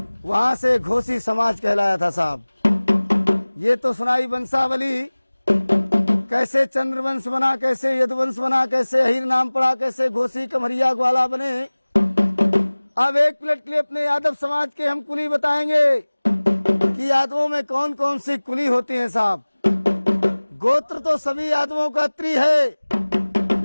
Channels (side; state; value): both; inverted; correlation -1.00